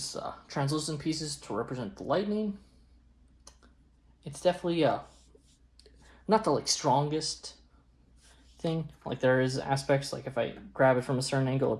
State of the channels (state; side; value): identical; both; correlation 1.00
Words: translucent pieces to represent the lightning. It's definitely not the like strongest thing. Like there is aspects, like if I grab it from a certain angle,